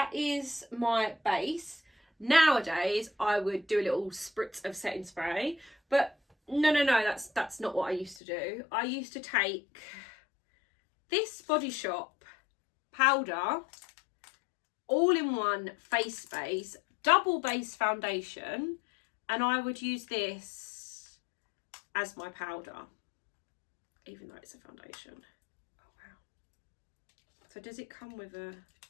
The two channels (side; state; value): right; drops out; at 8.2 s